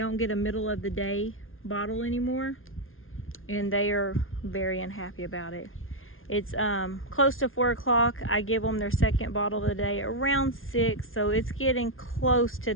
get a middle of the day bottle anymore, and they are very unhappy about it. It's close to 4 o'clock. I give them their second bottle of the day around 6, so it's getting close to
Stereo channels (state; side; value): late; right; 0.60 ms